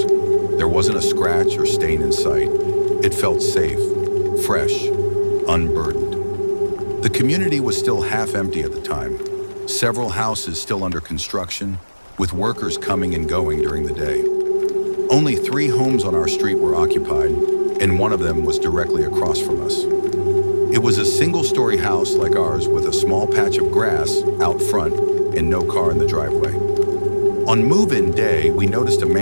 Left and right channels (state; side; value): inverted; both; correlation -1.00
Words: There wasn't a scratch or stain in sight. It felt safe, fresh, unburdened. The community was still half empty at the time. Several houses still under construction, with workers coming and going during the day. Only 3 homes on our street were occupied, and one of them was directly across from us. It was a single-story house like ours with a small patch of grass out front and no car in the driveway. On move-in day, we noticed a